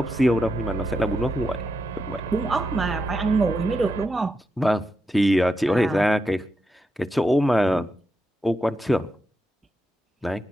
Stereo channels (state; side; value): normal; both; correlation 0.85